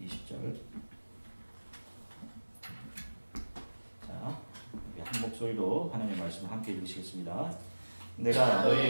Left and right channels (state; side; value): inverted; both; correlation -1.00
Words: 20절. 자, 우리 한 목소리로 하나님의 말씀을 함께 읽으시겠습니다. 내가